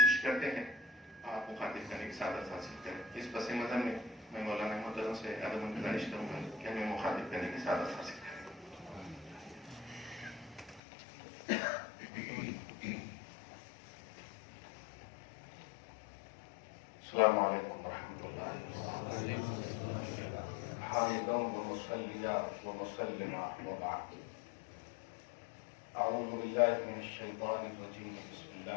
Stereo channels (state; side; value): drops out; right; at 10.8 s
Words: کرتے ہیں، آپ مخاطب کرنے کی سعادت حاصل کریں۔ اس پس منظر میں مولانا محترم سے ادب گزارش کروں گا کہ ہمیں مخاطب کرنے کی سعادت حاصل کریں۔ السلام علیکم ورحمۃ اللہ، حامداً ومصلیاً ومسلما وبعد۔ اعوذ باللہ من الشیطان الرجیم، بسم